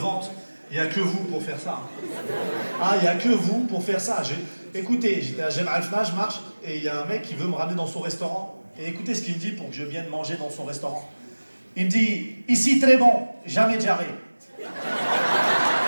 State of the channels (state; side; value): inverted; both; correlation -1.00